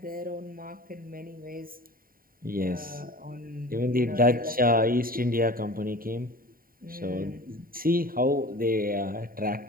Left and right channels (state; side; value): late; left; 0.42 ms